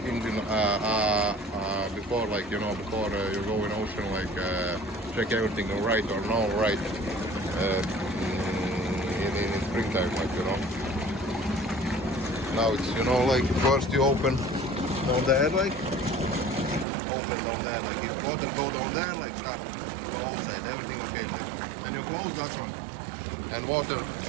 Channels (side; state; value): left; drops out; at 16.9 s